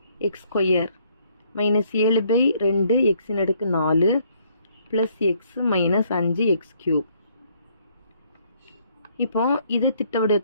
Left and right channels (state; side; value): inverted; both; correlation -0.66